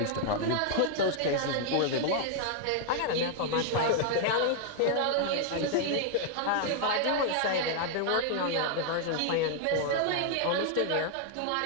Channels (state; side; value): different; both; correlation 0.00